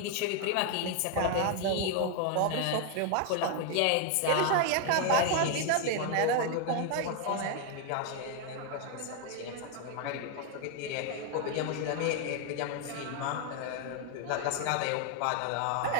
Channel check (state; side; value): different; both; correlation 0.00